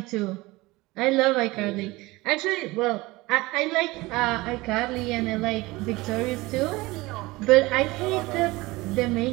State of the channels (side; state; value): left; quieter; 21.1 dB